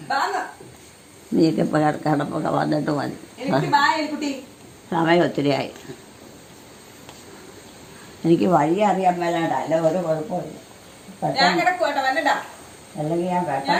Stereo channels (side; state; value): both; identical; correlation 1.00